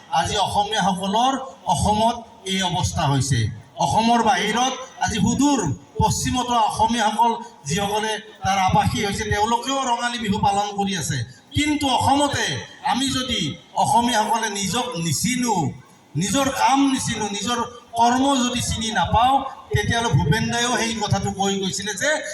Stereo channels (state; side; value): identical; both; correlation 1.00